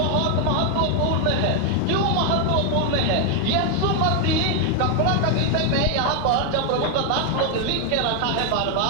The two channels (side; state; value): both; different; correlation 0.01